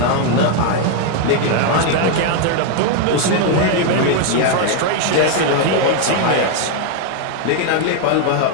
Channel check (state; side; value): different; both; correlation 0.01